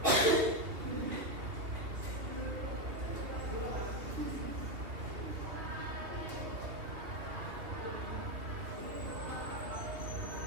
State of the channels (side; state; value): left; late; 3.1 ms